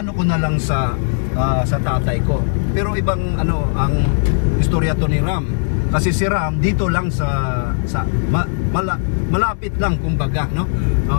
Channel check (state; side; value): silent; right; digital silence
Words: ko na lang sa tatay ko. Pero ibang ang istorya to ni Ram. Kasi si Ram dito lang malapit lang kumbaga, no?